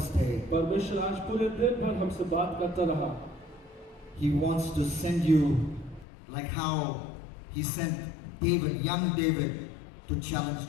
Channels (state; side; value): drops out; right; at 6.1 s